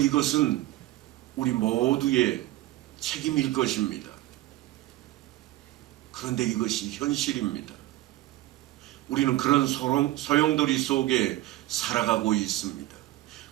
우리 모두의 책임일 것입니다. 그런데 이것이 현실입니다. 우리는 그런 소용돌이 속에 살아가고 있습니다.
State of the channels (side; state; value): left; quieter; 16.3 dB